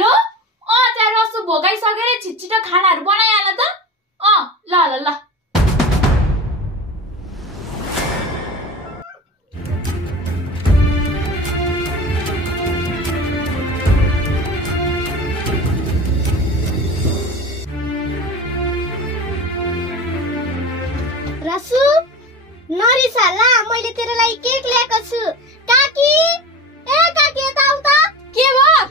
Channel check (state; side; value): normal; both; correlation 0.31